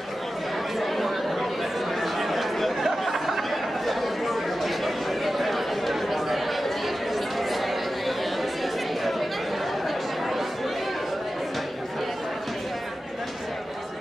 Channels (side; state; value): both; normal; correlation 0.93